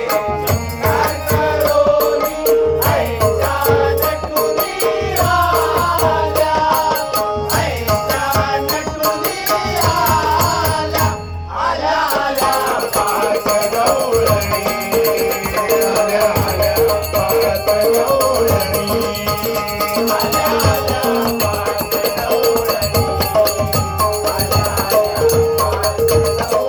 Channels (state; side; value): identical; both; correlation 1.00